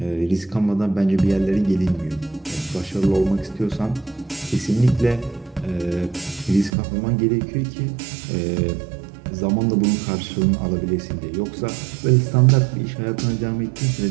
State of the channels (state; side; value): drops out; left; at 6.7 s